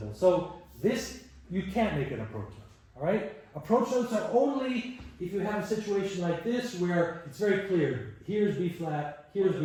So this, you can't make an approach note. All right? Approach notes are only if you have a situation like this where it's very clear. Here's B flat. Here's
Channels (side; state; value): both; identical; correlation 1.00